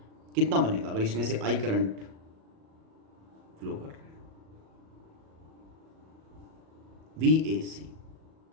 कितना बनेगा अगर इसमें से I करंट फ्लो कर रहा है। VAC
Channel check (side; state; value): left; late; 37 ms